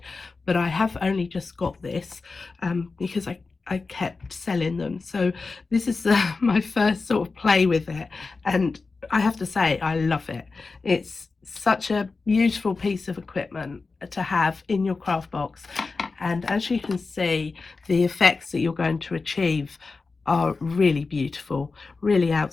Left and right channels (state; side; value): quieter; right; 4.1 dB